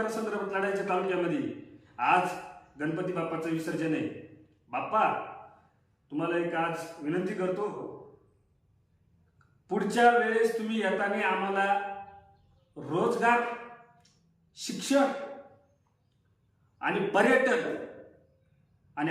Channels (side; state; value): both; identical; correlation 1.00